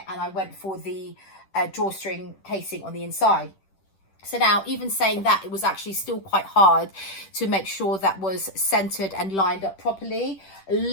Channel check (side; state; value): right; late; 10 ms